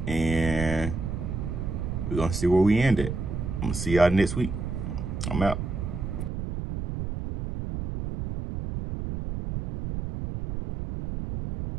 And we're going to see where we end it. I'm going to see y'all next week. I'm out.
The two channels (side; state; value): right; noise; rumble, 4 dB below the sound